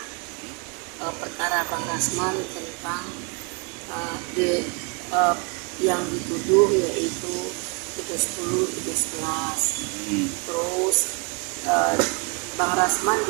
perkara Bang Rasman tentang yang dituduh yaitu 310, 311. Terus Bang Rasman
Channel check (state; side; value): quieter; left; 32.1 dB